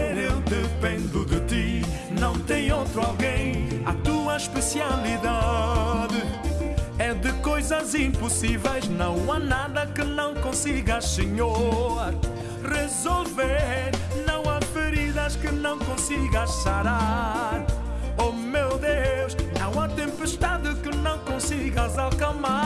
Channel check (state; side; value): identical; both; correlation 1.00